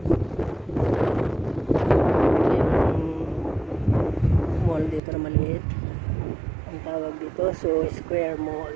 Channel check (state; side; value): drops out; left; at 5.0 s